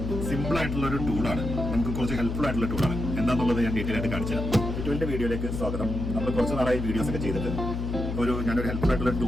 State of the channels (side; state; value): left; noise; hum, 4 dB below the sound